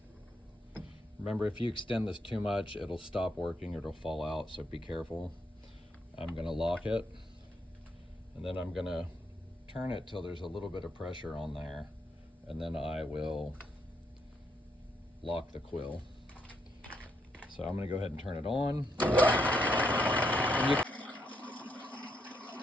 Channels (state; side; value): normal; both; correlation 0.77